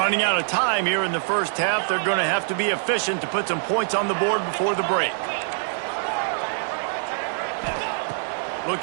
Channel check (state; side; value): silent; left; digital silence